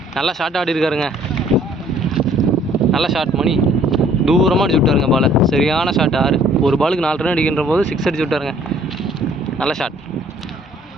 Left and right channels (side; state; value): both; normal; correlation 0.58